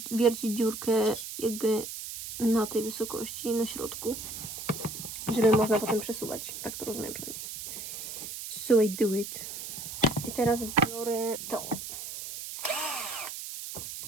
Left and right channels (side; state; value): right; noise; hiss, 8 dB below the sound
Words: wiercić dziurkę jakby na tej wysokości, na środku, żeby można potem przesuwać. Tak to rozumiem przynajmniej. So I do it. I teraz biorę to.